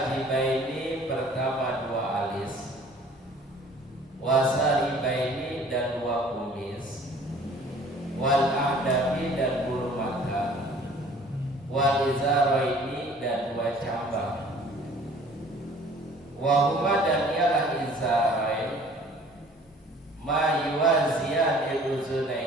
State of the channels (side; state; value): both; normal; correlation 0.52